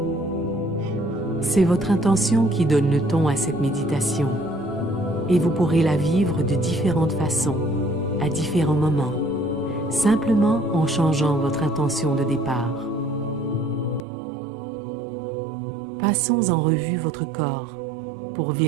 C'est votre intention qui donne le ton à cette méditation et vous pourrez la vivre de différentes façons, à différents moments, simplement en changeant votre intention de départ. Passons en revue votre corps pour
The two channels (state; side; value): drops out; left; at 14.0 s